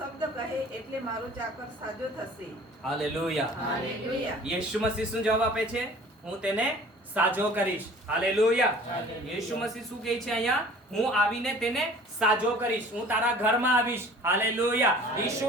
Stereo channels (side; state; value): both; normal; correlation 0.48